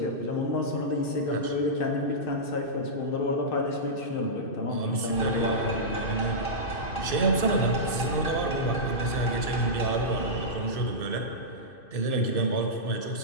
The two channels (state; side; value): late; right; 2.6 ms